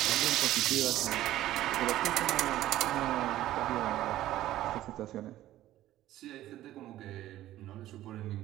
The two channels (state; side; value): quieter; left; 14.2 dB